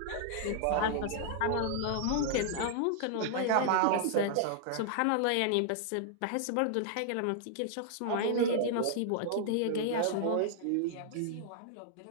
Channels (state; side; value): different; both; correlation -0.01